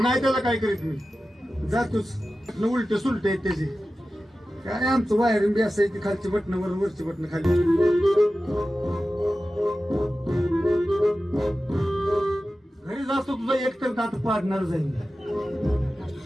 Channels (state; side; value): normal; both; correlation 0.94